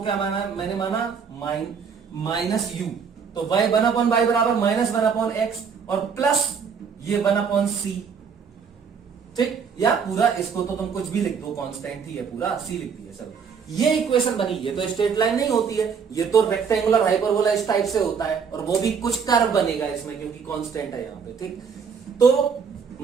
माना मैंने माना -u, तो y 1/y बराबर -1/x और प्लस ये 1/c, ठीक, या पूरा इसको तो तुम कुछ भी लिख दो, कांस्टेंट ही है पूरा, c लिख दिया। चलो ये इक्वेशन बनी, ये तो स्ट्रेट लाइन नहीं होती है, ये तो रेक्टेंगुलर हाइपरबोला इस टाइप से होता है, और वो भी कुछ कर्व बनेगा इसमें क्योंकि कांस्टेंट है यहाँ पे, ठीक। तो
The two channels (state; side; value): quieter; left; 6.3 dB